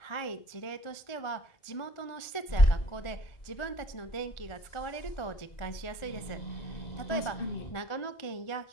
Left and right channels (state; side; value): late; right; 1.4 ms